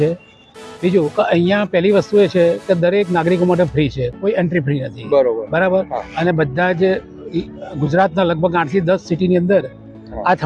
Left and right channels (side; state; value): both; identical; correlation 1.00